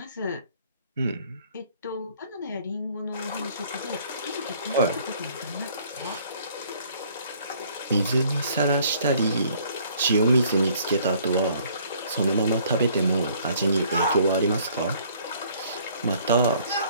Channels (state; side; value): inverted; both; correlation -0.59